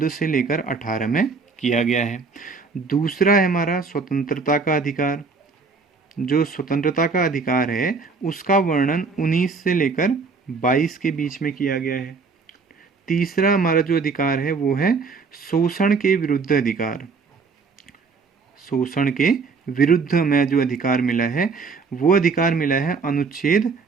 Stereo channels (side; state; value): left; quieter; 4.7 dB